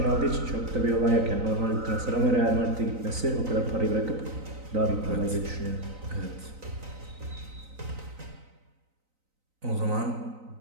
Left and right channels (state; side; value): late; left; 3.9 ms